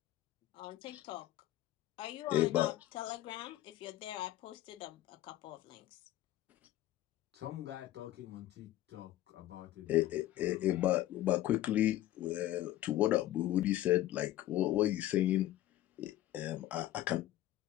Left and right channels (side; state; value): right; quieter; 14.2 dB